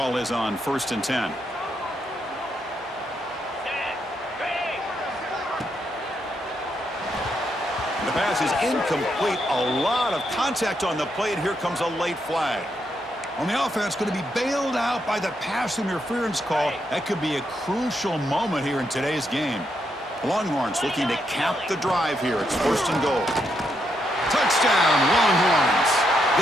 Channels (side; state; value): both; normal; correlation 0.79